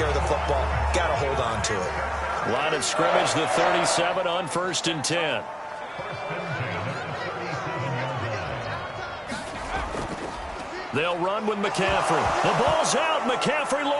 of the football. Got to hold on to it. Line of scrimmage, the 37 on 1st and 10. They'll run with McCaffrey. The ball's out. McCaffrey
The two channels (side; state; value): both; identical; correlation 1.00